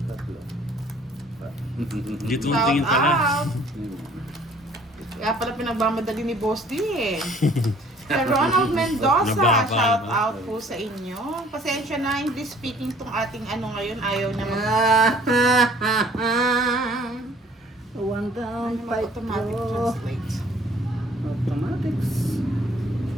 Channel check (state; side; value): normal; both; correlation 0.55